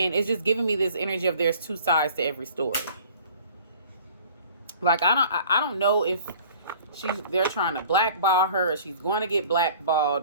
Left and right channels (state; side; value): inverted; both; correlation -0.49